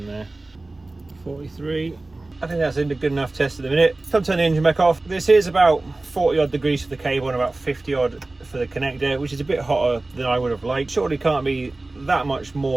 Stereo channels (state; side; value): quieter; left; 3.0 dB